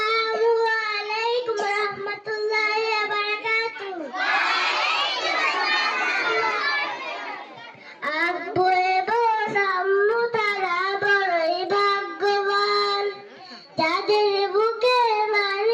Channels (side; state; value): both; identical; correlation 1.00